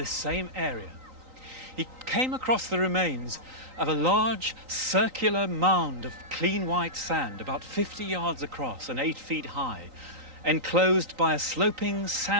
same area. He came across the remains of a large circular mound of clean white sand, about 50 yards across and 8 feet high, enclosed by a sloping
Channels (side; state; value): left; late; 3.9 ms